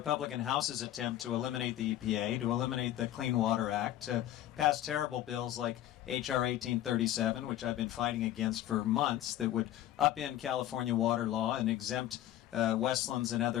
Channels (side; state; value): right; quieter; 13.0 dB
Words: House's attempt to eliminate the EPA, to eliminate the Clean Water Act, to pass terrible bills like H.R. 1837, which I've been fighting against for months, that would upend California water law and exempt Westlands and